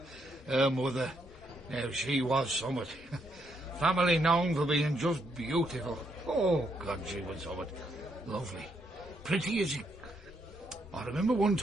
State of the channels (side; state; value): both; normal; correlation 0.76